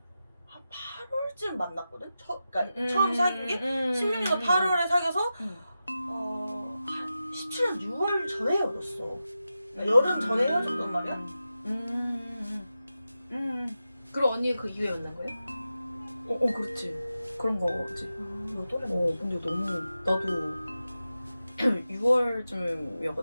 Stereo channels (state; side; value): inverted; both; correlation -0.92